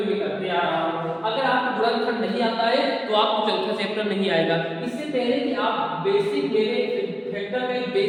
में करते आ रहा हूँ। अगर आपको गुणनखंड नहीं आता है तो आपको चौथा चैप्टर नहीं आएगा। इससे पहले कि आप बेसिक मेरे फैक्टर का एक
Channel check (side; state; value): both; identical; correlation 1.00